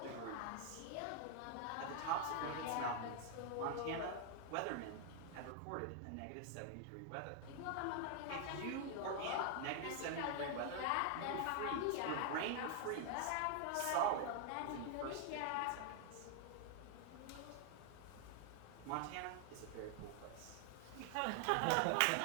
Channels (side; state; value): both; different; correlation 0.00